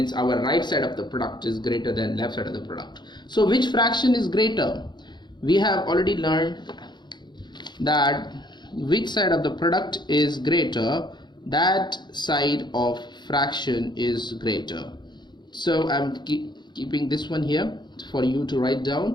our right side of the product is greater than left side of the product. So which fraction is greater? We have already learned that which side of the product is greater, that side of fraction is greater. So I'm keeping this one here for you to write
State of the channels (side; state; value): right; late; 0.21 ms